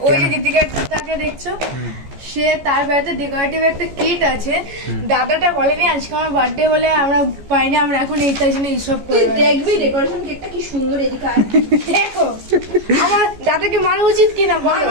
ওই যে দীপিকাটাকে দেখছো, সে তার বাড়িতে ডেকোরেটিভ একটা কিট আছে, দাদাটা বলেনি আজকে আমার বার্থডে বলে আমরা পাইনি, আমরা এখন এই তাই জন্য এইসব তুই দেখবি ডেকোরেশন কেকটা কি সুন্দর, এদিকে আয়। দেখো আমার দাদাকে মারা উচিত কিনা বলো,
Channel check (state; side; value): late; left; 14 ms